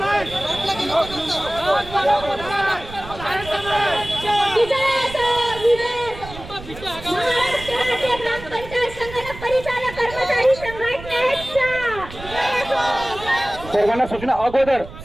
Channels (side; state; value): right; noise; rumble, 14 dB below the sound